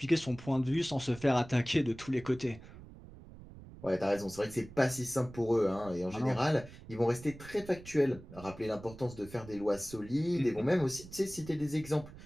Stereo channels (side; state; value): right; noise; rumble, 17 dB below the sound